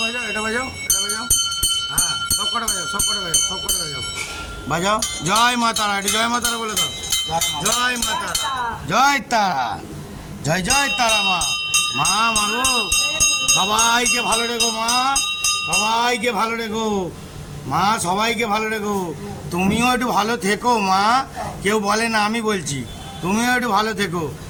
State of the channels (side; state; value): both; identical; correlation 1.00